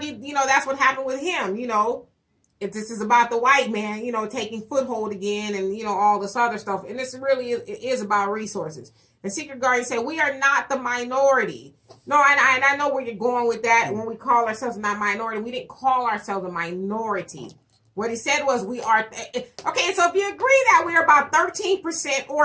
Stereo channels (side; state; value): both; identical; correlation 1.00